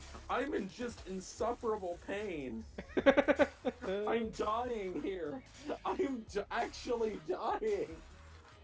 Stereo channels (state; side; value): identical; both; correlation 1.00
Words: I'm in just insufferable pain. I'm dying here. I'm actually dying.